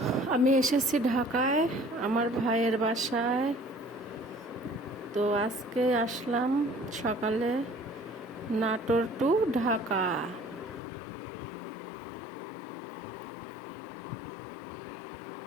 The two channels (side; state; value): right; drops out; at 10.8 s